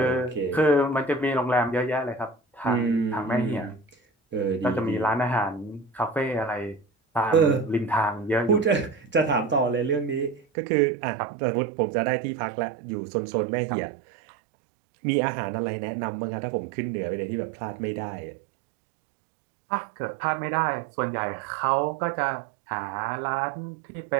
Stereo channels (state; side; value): drops out; left; at 10.5 s